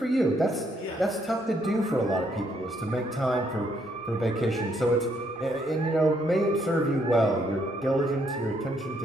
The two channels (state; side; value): normal; both; correlation 0.72